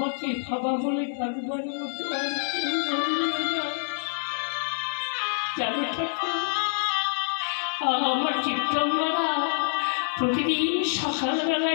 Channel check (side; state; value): right; silent; digital silence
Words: ভাবা বলে থাকবার মতো আর কেউ রইল না। জানো ঠাকুর, আমার চিত্তঙ্গরা প্রতিদিন